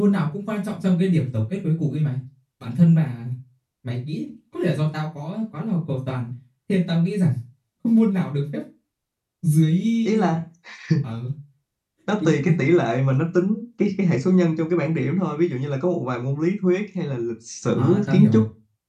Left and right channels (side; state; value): both; identical; correlation 1.00